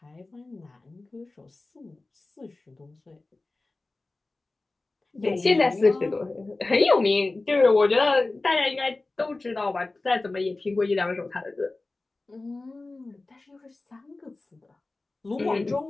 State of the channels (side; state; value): right; quieter; 3.2 dB